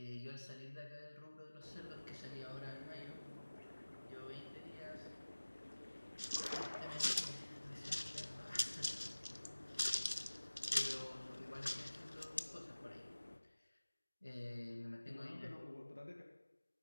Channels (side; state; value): both; inverted; correlation -1.00